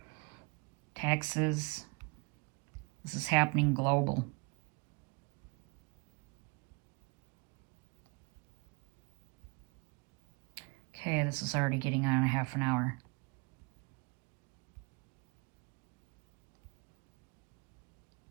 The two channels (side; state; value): left; quieter; 30.0 dB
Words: Texas. This is happening global. Okay, this is already getting on a half an hour.